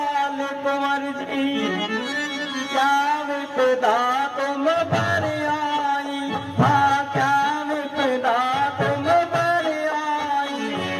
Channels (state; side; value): identical; both; correlation 1.00